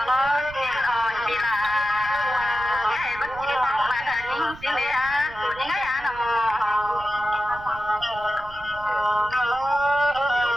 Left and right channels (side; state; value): right; noise; rumble, 18 dB below the sound